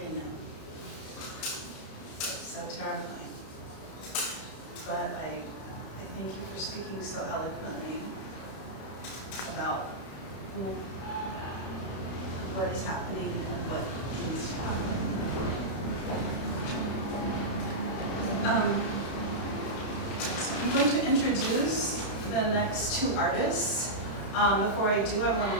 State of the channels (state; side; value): late; right; 32 ms